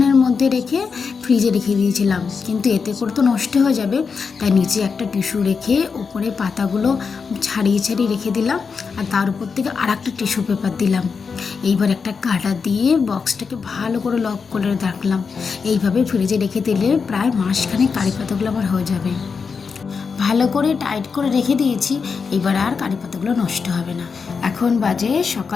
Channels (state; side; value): quieter; right; 5.4 dB